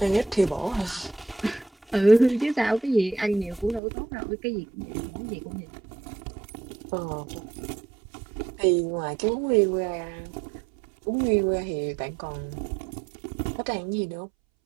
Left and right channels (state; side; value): drops out; left; at 3.8 s